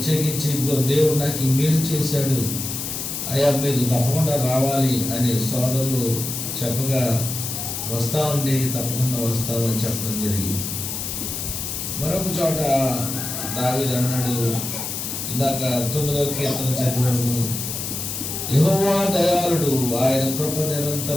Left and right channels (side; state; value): left; noise; hiss, 5 dB below the sound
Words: దేవుడు నాకు ఈ మేలు చేశాడు, అయ్యా మీరు తప్పకుండా రావాలి అని సోదరులు చెప్పగా వస్తామండి, తప్పకుండా వస్తామని చెప్పడం జరిగింది. మరొక చోట దావీదు అన్నాడు, ఇందాక 9వ కీర్తన చదివాము, యెహోవా దయాళుడు, ఆయన కృప